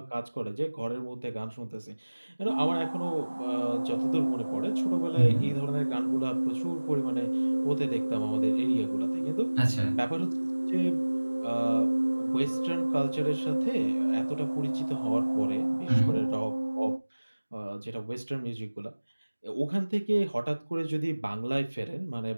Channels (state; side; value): inverted; both; correlation -1.00